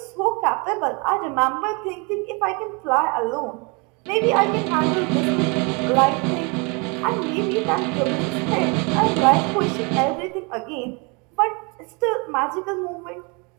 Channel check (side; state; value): left; quieter; 31.1 dB